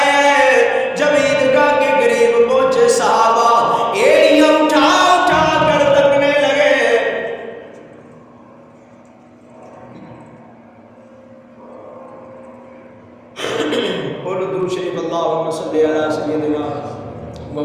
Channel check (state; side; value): identical; both; correlation 1.00